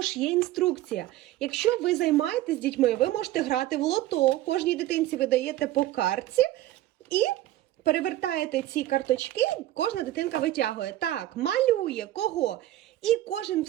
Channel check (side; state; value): left; quieter; 14.7 dB